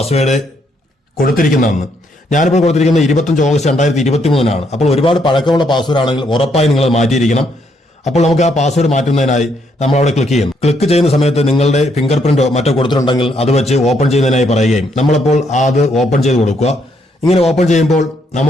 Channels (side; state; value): both; normal; correlation 0.73